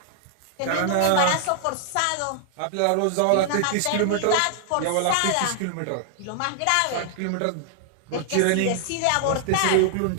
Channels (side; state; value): both; different; correlation 0.00